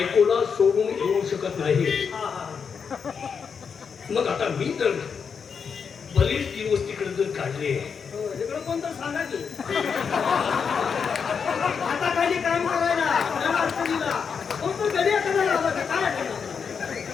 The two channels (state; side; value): quieter; right; 6.3 dB